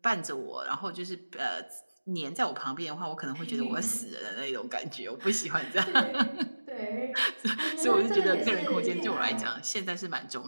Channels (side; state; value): both; inverted; correlation -1.00